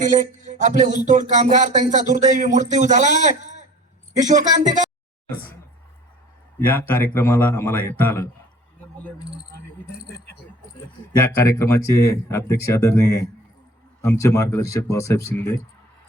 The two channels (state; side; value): normal; both; correlation 0.46